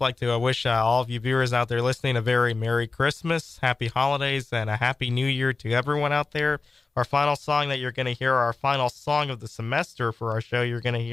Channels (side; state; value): right; quieter; 3.8 dB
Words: like to wish all of you viewers out there listening a very Merry Christmas, Happy Holidays, and a Happy New Year to everyone out there. Our final song that you're going to hear, our final song of the semester for our show you're going to